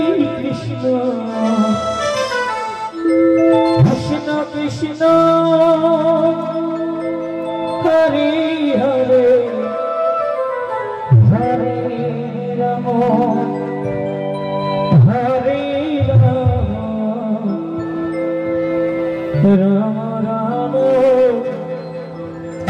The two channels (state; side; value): identical; both; correlation 1.00